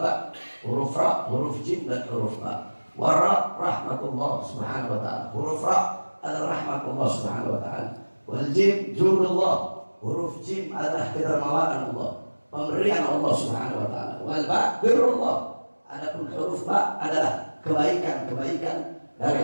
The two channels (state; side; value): inverted; both; correlation -1.00